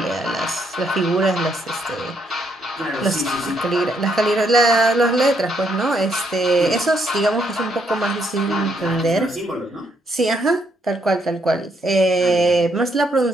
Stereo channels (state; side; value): normal; both; correlation 0.74